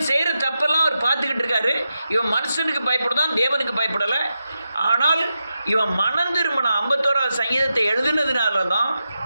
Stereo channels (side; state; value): both; inverted; correlation -0.89